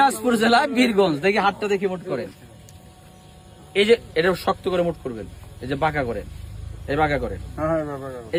জেলা বীরগঞ্জ। দেখি হাতটা দেখি মোট করেন। এই যে এটা শক্ত করে মোট করবেন, এই যে বাঁকা করেন, এই বাঁকা করেন। এই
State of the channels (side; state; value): both; identical; correlation 1.00